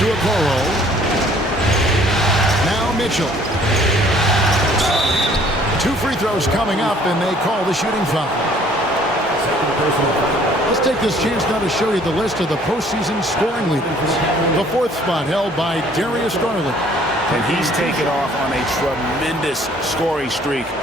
Okoro. Now Mitchell. 2 free throws coming up, and they call the shooting foul. Let's take this chance now to show you the list of the postseason scoring leaders. The 4th spot held by Darius Garland. And he's taken off on a tremendous scoring streak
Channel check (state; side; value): normal; both; correlation 0.57